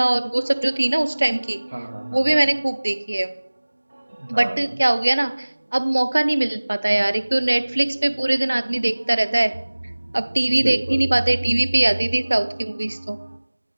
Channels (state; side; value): inverted; both; correlation -1.00